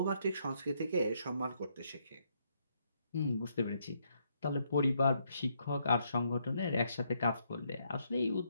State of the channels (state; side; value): inverted; both; correlation -0.74